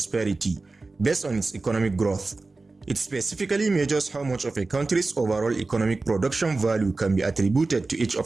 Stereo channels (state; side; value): quieter; left; 3.5 dB